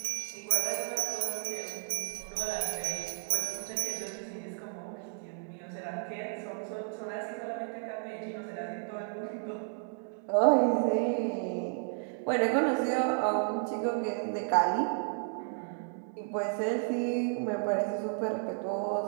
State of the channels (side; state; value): left; silent; 56 dB below the other